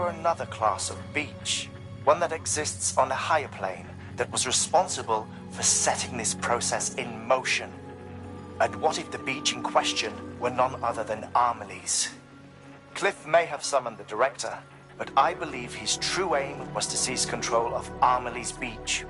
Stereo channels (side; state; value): both; identical; correlation 1.00